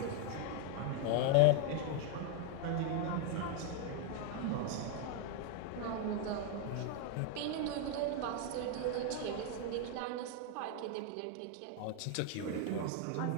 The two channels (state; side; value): different; both; correlation 0.00